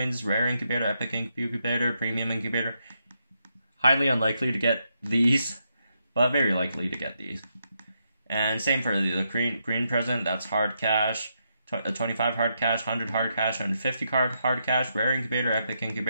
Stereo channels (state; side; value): inverted; both; correlation -0.81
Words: rare incubator, epic incubator, premium incubator. Highly unlikely to get these, but very likely to get these. And same for the green present, that's hard cash, 25 hard cash, 100 hard cash, 150 hard cash, rare incubator, epic